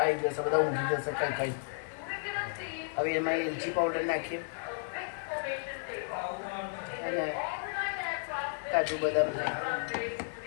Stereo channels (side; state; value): right; silent; 56 dB below the other